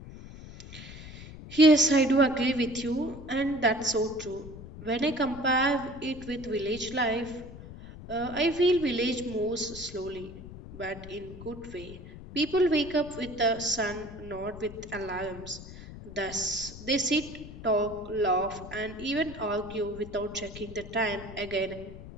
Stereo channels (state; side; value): noise; left; rumble, 14 dB below the sound